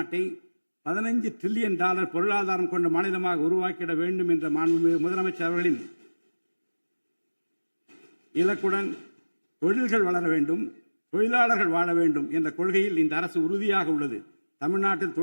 $15 டிரில்லியன் பொருளாதாரம் கொண்ட மாநிலமாக உருவாக்கிட வேண்டும் என்ற முதலமைச்சர் அவர்களின் இலக்குடன் தொழில்கள் வளர வேண்டும், தொழிலாளர்கள் வாழ வேண்டும் என்ற கொள்கையில் இந்த அரசு உறுதியாக உள்ளது. தமிழ்நாட்டில்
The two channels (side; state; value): both; inverted; correlation -1.00